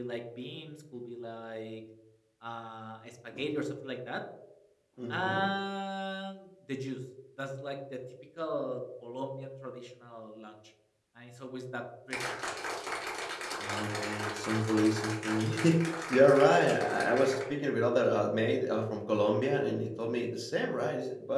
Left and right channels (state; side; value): identical; both; correlation 1.00